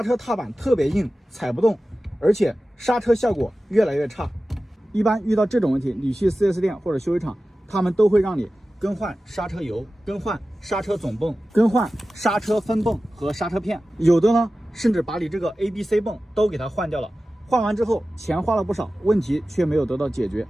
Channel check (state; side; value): normal; both; correlation 0.95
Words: 车踏板特别硬，踩不动，而且刹车效果越来越差。一般遇到这种问题，你去 4S 店或者修理厂，他们都会让你更换刹车油、更换刹车总泵、更换刹车分泵和刹车片，有的呢甚至把你这个 ABC 泵都给它换掉了。换完之后钱花了不少，问题却没有得到解决。